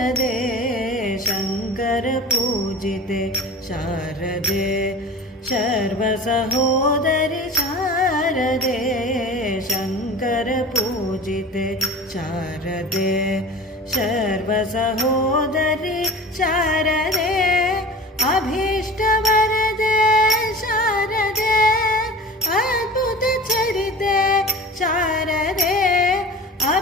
शङ्कर पूजिते शारदे सर्वसहोदरि शारदे शङ्कर पूजिते शारदे सर्वसहोदरि शारदे अभीष्टवरदे शारदे अद्भुतचरिते शारदे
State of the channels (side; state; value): both; normal; correlation 0.37